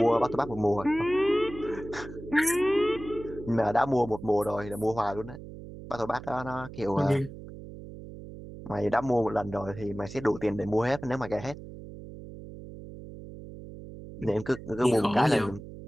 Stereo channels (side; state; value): right; noise; hum, 13 dB below the sound